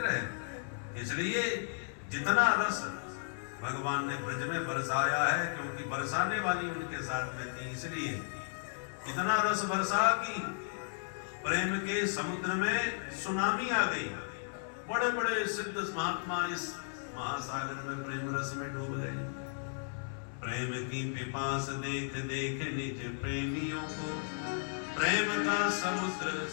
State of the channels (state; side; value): silent; right; 55 dB below the other